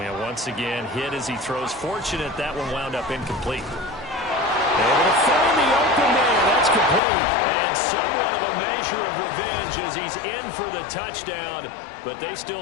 once again, hit as he throws. Fortunate that one wound up incomplete. Able to find the open man. That's complete. And somewhat of a measure of revenge as he's in for the touchdown, but they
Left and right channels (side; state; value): right; drops out; at 7.0 s